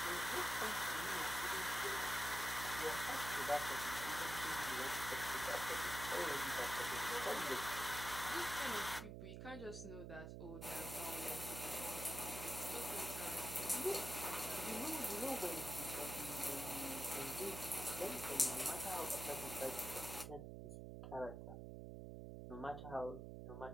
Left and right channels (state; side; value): noise; right; hum, 8 dB below the sound